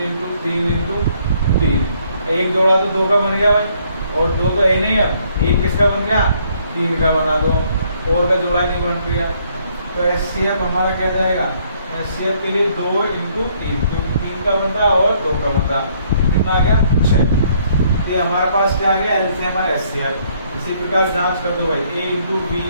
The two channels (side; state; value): both; inverted; correlation -0.67